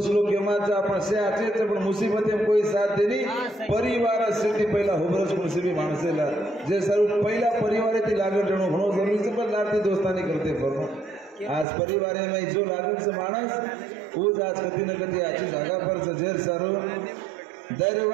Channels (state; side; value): drops out; left; at 11.7 s